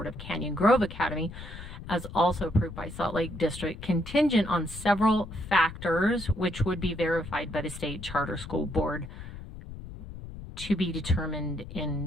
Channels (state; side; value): noise; left; rumble, 12 dB below the sound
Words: of Canyon Grove Academy, as also approved by Salt Lake District, contingent on several factors which would be verified by the State Charter School Board, to be determined in